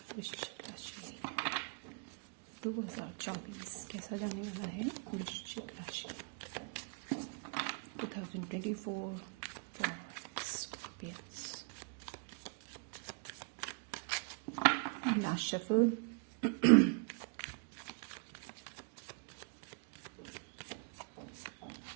वृश्चिक राशि, 2024 कैसा जाने वाला है वृश्चिक राशि 2024 for scorpions. Last shuffle.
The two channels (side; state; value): left; quieter; 38.0 dB